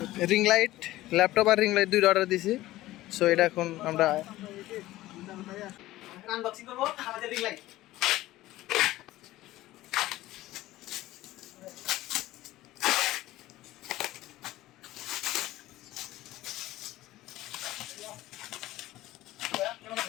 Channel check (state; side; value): quieter; right; 16.4 dB